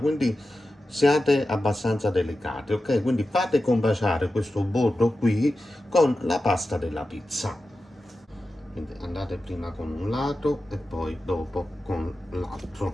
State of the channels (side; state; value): both; normal; correlation 0.92